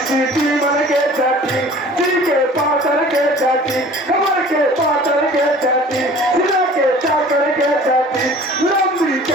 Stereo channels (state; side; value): normal; both; correlation 0.47